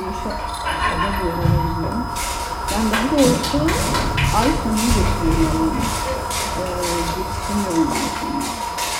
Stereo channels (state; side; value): identical; both; correlation 1.00